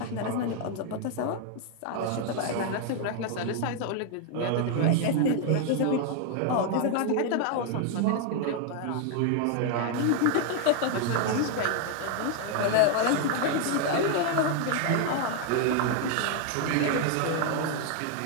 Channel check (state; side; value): different; both; correlation 0.00